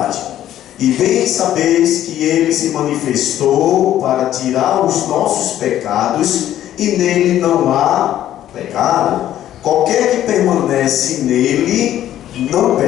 E bem sabeis que Ele se manifestou para tirar os nossos pecados, e nele não há pecado. Qualquer que permanece nele não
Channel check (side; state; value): right; quieter; 12.1 dB